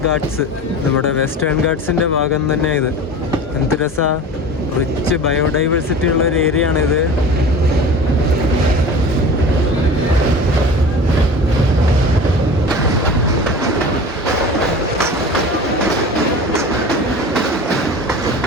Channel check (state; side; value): normal; both; correlation 0.36